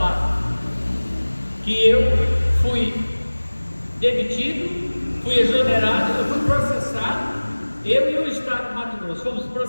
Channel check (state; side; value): inverted; both; correlation -1.00